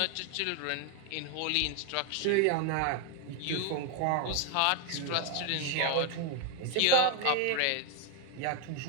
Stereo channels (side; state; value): both; different; correlation 0.01